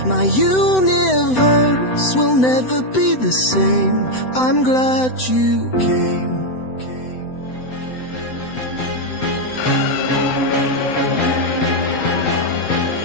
My universe will never be the same. I'm glad you came.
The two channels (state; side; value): late; right; 7.9 ms